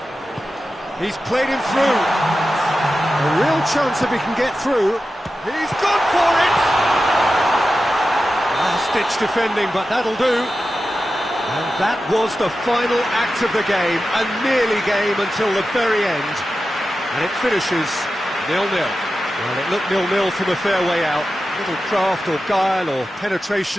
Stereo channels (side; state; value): both; normal; correlation 0.92